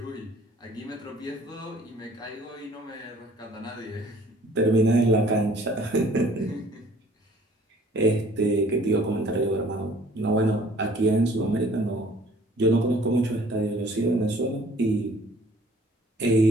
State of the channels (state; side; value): normal; both; correlation 0.55